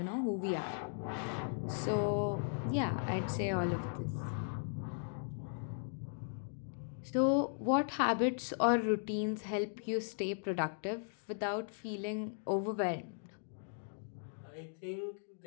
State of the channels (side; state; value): right; silent; digital silence